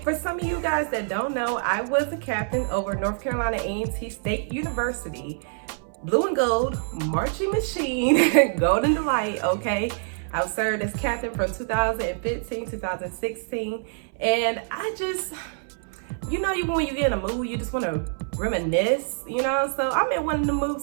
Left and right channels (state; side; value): silent; left; 60 dB below the other